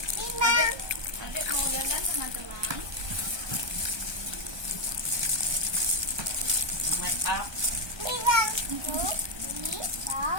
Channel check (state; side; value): late; left; 1.2 ms